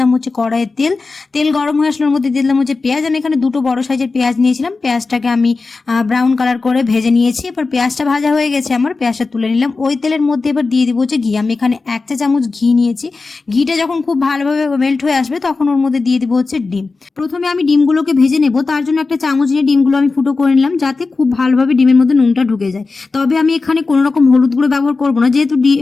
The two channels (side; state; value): right; quieter; 4.0 dB